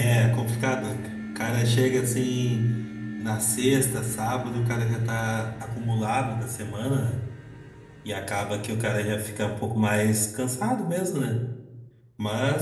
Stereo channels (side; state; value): both; identical; correlation 1.00